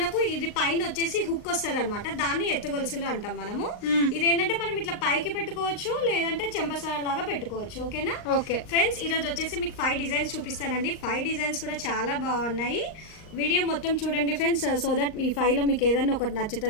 ఇది పైన వచ్చేసి హుక్ వస్తుంది అనమాట, దాన్ని ఎత్తుగొలుసులు అంటాం మనము. ఇదేంటంటే మనం ఇట్లా పైకి పెట్టుకోవచ్చు, లేదంటే చెంపసార లాగా పెట్టుకోవచ్చు. ఓకేనా? ఓకే ఫ్రెండ్స్, ఈ రోజు వచ్చేసి మీకు 5 డిజైన్స్ చూపిస్తానండి. 5 డిజైన్స్ కూడా చాలా బాగున్నాయి. వీడియో మొత్తం చూడండి ఫ్రెండ్స్, సో దట్ ఈ 5లో మీకు ఏదన్నా ఒకటి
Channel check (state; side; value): late; right; 39 ms